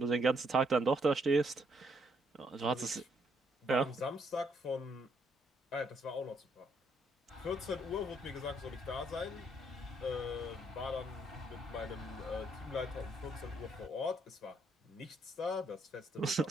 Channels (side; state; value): both; normal; correlation 0.72